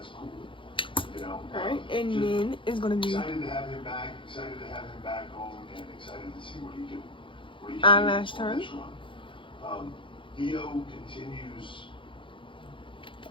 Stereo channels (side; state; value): right; late; 0.25 ms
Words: cool. You know. alright, and just then it's gonna be excited to have him back. Excited to have him back home, and excited to see what he can. eyelash do on turn. this run. Io continues